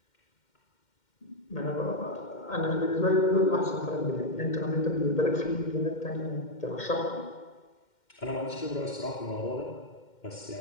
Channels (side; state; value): right; late; 2.1 ms